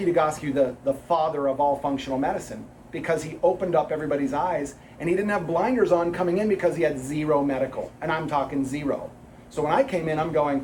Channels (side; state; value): both; identical; correlation 1.00